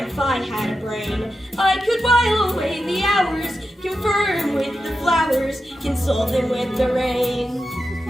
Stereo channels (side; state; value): both; normal; correlation 0.89